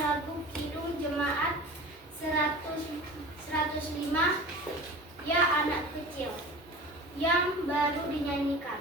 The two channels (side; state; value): both; normal; correlation 0.37